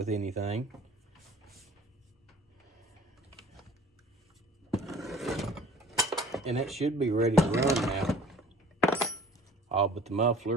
anything. And that should be ready to run now. All but the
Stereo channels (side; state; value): both; normal; correlation 0.48